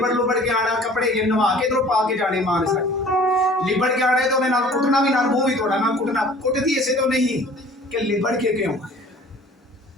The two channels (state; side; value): normal; both; correlation 0.49